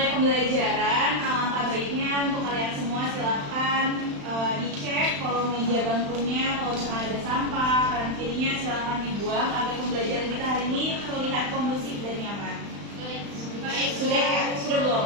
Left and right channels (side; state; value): left; late; 35 ms